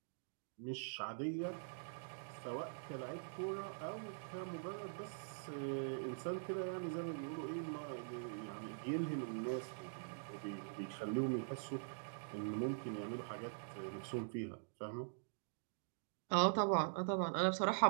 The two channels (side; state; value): left; silent; digital silence